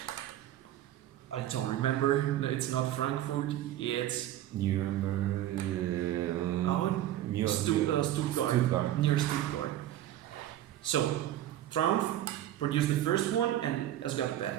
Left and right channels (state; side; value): quieter; left; 13.0 dB